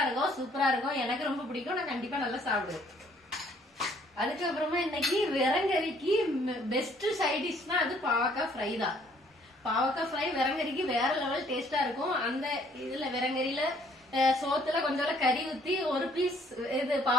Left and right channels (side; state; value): both; normal; correlation 0.62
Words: இருக்கும், சூப்பரா இருக்கும். எனக்கு ரொம்ப பிடிக்கும், நான் கண்டிப்பா நல்லா சாப்பிடுவேன். அதுக்கப்புறமா இன்னைக்கு விரங்கறிக்கு பெஸ்ட் சைட் டிஷ்னா அது பாவக்காய் ஃப்ரை தான். பாவக்காய் ஃப்ரை விரங்கறிக்கு வேற லெவல் டேஸ்டா இருக்கும். அந்த இதுல விரங்கறியில சோத்துல கொஞ்சம் கறி ஊத்தி ஒரு பீஸ் இது